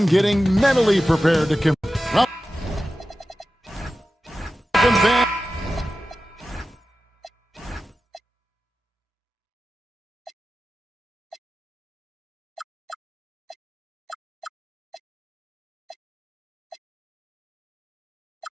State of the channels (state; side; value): normal; both; correlation 0.93